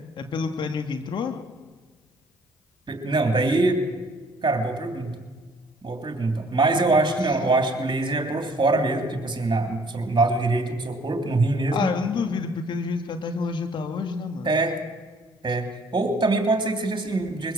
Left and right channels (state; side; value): normal; both; correlation 0.59